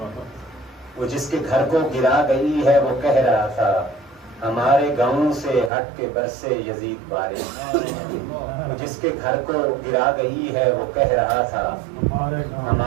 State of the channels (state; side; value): drops out; left; at 5.7 s